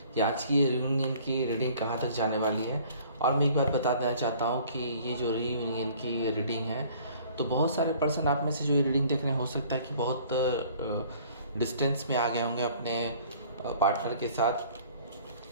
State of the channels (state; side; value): inverted; both; correlation -0.53